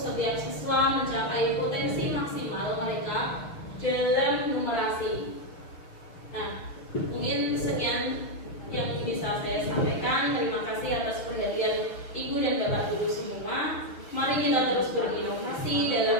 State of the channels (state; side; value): late; right; 6.5 ms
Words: siswa mencapai potensi maksimal mereka dalam numerasi. Nah, mungkin sekian yang bisa saya sampaikan. Terima kasih atas perhatian Ibu dan Bapak Guru semua. Mari kita terus berinovasi